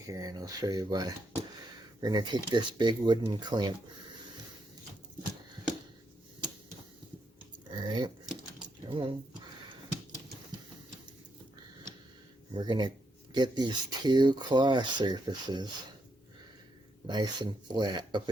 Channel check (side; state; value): both; normal; correlation 0.78